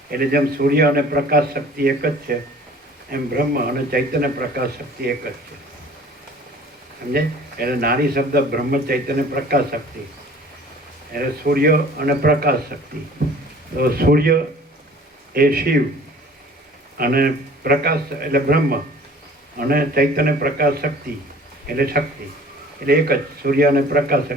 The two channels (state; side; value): normal; both; correlation 0.48